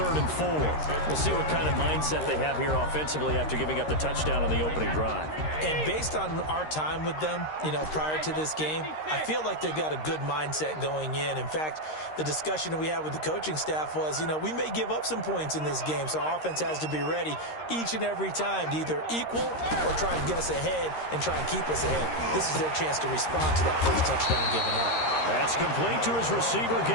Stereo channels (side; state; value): right; late; 13 ms